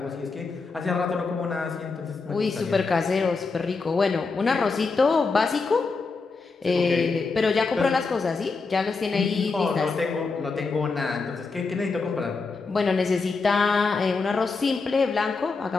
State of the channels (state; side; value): quieter; right; 4.3 dB